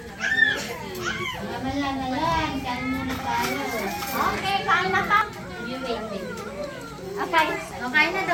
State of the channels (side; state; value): both; identical; correlation 1.00